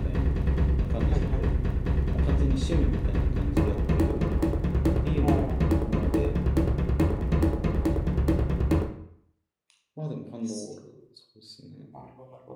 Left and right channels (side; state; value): both; identical; correlation 1.00